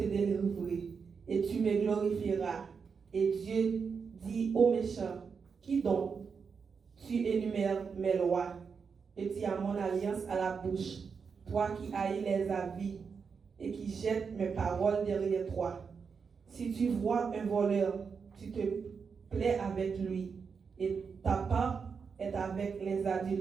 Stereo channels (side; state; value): left; quieter; 5.8 dB